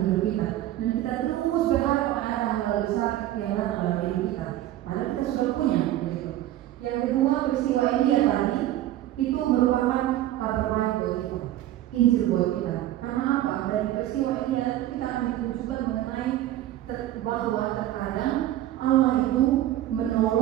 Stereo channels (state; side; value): quieter; left; 13.7 dB